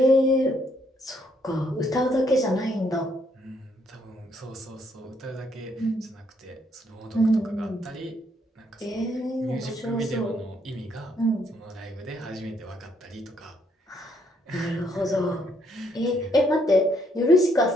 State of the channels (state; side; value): normal; both; correlation 0.71